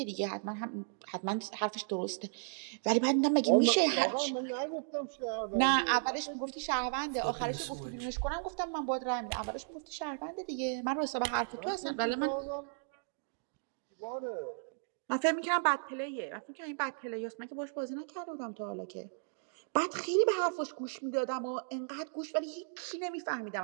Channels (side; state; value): left; silent; digital silence